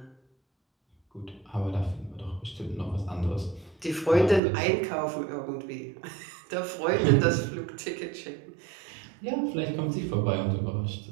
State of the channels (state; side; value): drops out; left; at 4.4 s